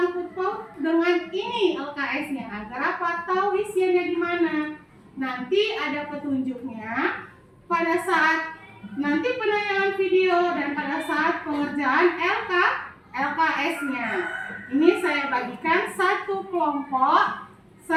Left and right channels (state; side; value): identical; both; correlation 1.00